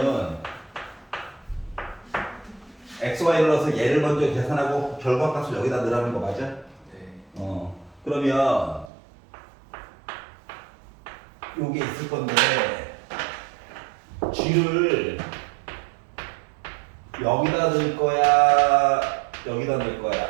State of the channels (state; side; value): drops out; left; at 8.9 s